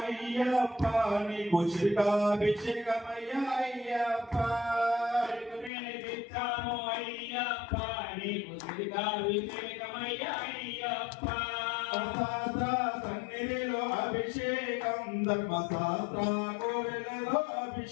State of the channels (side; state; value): right; drops out; at 5.7 s